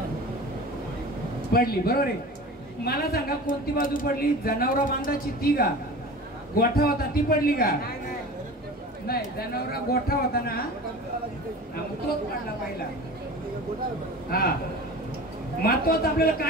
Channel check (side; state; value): both; normal; correlation 0.36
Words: पडली, बरोबर आहे. मला सांगा कोणती बाजू पडली, जनावरा बांधाची ती का, गोठा होता ती पडली का, नाही जनावरा गोठा होता ना, तोच पडला पहिला. हा, महत्वाचं आपल्याला